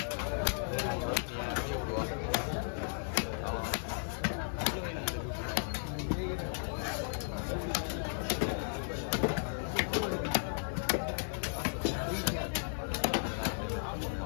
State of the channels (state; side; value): silent; right; digital silence